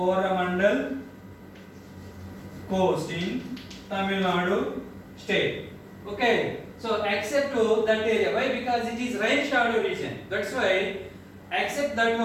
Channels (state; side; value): identical; both; correlation 1.00